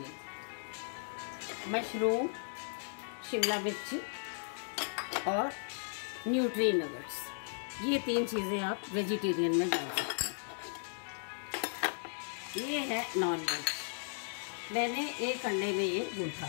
मशरूम, शिमला मिर्ची और न्यूट्री नगेट्स, ये 3 चीज़ें आप वेजिटेरियन में डाल सकते हैं। ये है नॉन वेज, मैंने 1 अंडे में ये गूंथा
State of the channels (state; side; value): silent; right; digital silence